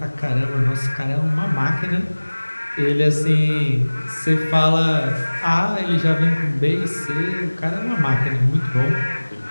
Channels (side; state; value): both; inverted; correlation -1.00